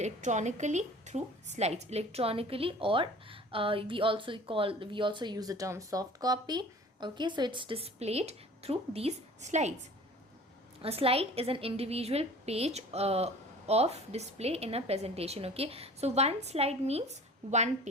through slides, electronically, or we also use the term soft copy, okay? So it's displayed through these slides. A slide is an individual page of display in a presentation, okay? So one slide means one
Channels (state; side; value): normal; both; correlation 0.44